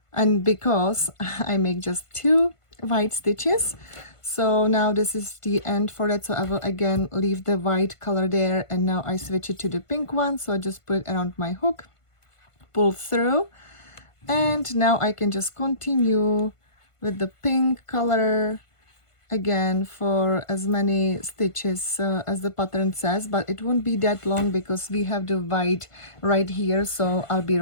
And because I make just 2 white stitches, so now this is the end for that. So I will again leave the white color there, and now I switch it to the pink one. So I just put it around my hook, pull through, and now I can just continue with the pink color again for as many stitches as the pattern says, but it won't be that long because we have the white right here. So I'll be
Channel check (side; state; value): right; late; 1.5 ms